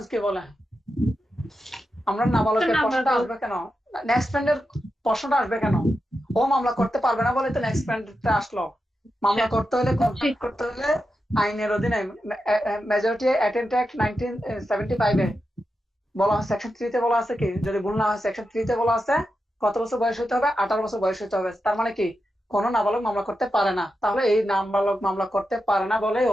কি বলে। আমরা নাবালকের প্রশ্নটা আসবে কেন, নেক্সট ফ্রেন্ডের প্রশ্নটা আসবে কেন, ও মামলা করতে পারবে না বলে তো নেক্সট ফ্রেন্ডটা আসলো। মামলা করতে হলে, কন্ট্যাক্ট করতে হলে আইনের অধীনে মেজরিটি অ্যাটেন্ট অ্যাক্ট 1975 এ বলা হয়, সেকশন 3 তে বলা আছে কি, যদি ভুল না হয় সেকশন 3 তে বলা আছে কত বছর বয়স হতে হবে, 18 বছর বয়স হতে হবে। তার মানে কি, কোনো নাবালক মামলা করতে পারে না। তাহলে এই নাবালক মামলা করতে পারে না বলে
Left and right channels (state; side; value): normal; both; correlation 0.89